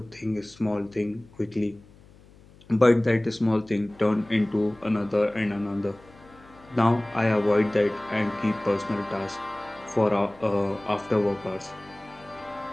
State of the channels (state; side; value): noise; left; hum, 25 dB below the sound